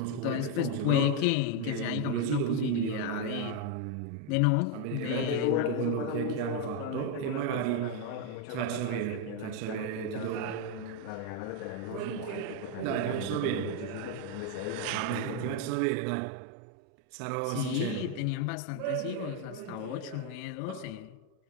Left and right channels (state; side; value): different; both; correlation 0.01